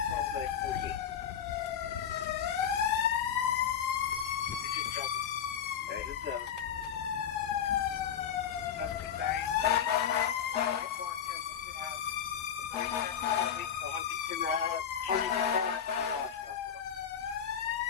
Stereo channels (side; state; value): right; quieter; 8.5 dB